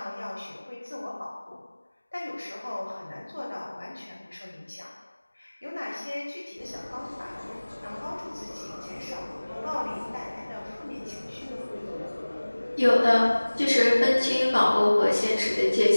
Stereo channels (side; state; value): both; inverted; correlation -1.00